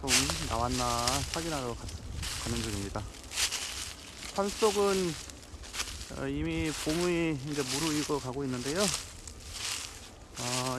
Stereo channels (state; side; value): identical; both; correlation 1.00